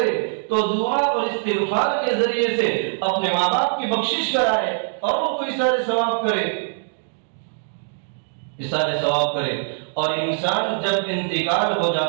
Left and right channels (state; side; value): silent; left; digital silence